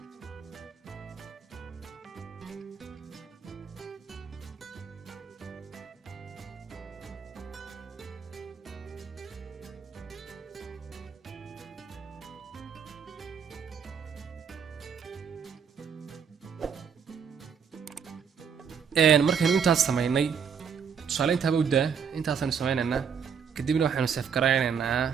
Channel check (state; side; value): quieter; left; 6.9 dB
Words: markaynu intaas sameynay tusaale intaaba u daa intaasaynu sameynaynaa. kadibna waxaanu save garaynaynaa